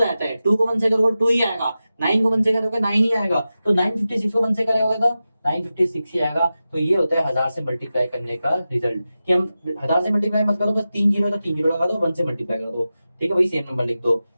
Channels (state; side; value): inverted; both; correlation -0.93